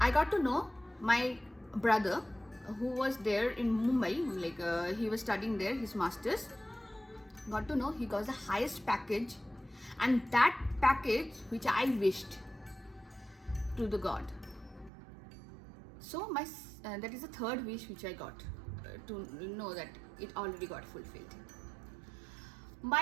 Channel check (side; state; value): left; drops out; at 14.9 s